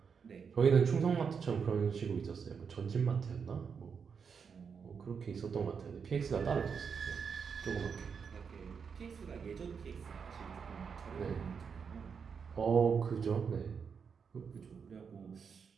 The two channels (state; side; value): quieter; left; 6.2 dB